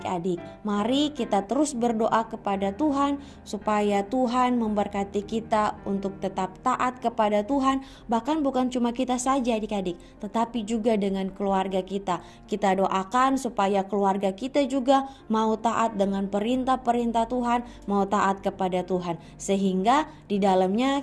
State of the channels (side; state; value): both; identical; correlation 1.00